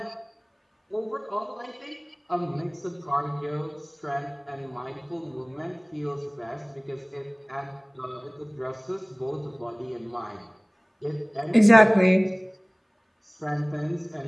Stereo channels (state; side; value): identical; both; correlation 1.00